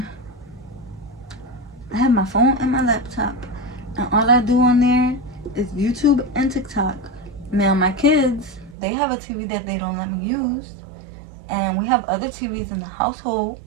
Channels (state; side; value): drops out; left; at 8.8 s